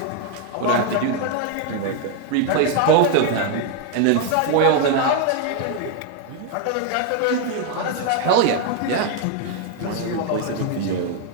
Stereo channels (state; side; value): different; both; correlation 0.01